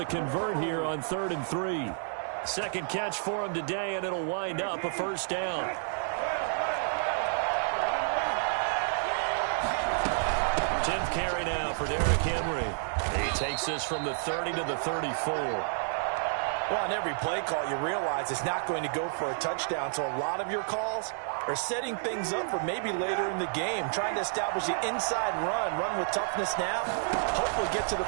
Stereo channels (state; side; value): silent; left; 58 dB below the other